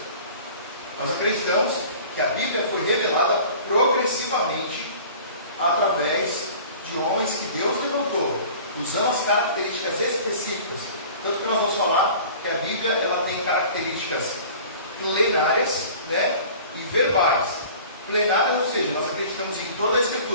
Nós acreditamos que a Bíblia foi revelada progressivamente através de homens que Deus levantou, usando as características específicas. Tanto que nós vamos falar que a Bíblia ela tem características plenárias, né, e verbais. Plenárias, ou seja, nós acreditamos em toda a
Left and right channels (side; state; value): both; inverted; correlation -0.44